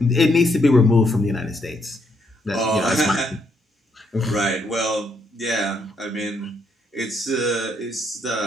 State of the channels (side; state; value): both; normal; correlation 0.75